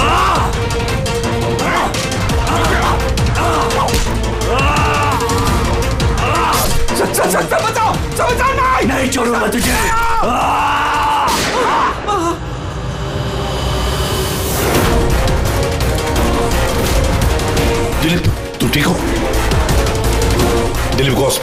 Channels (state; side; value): identical; both; correlation 1.00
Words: सर बचाओ नहीं छोड़ूंगा तुझे। दिलीप तू ठीक हो? दिलीप को